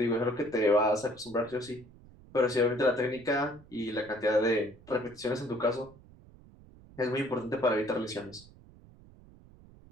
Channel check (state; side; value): noise; right; rumble, 23 dB below the sound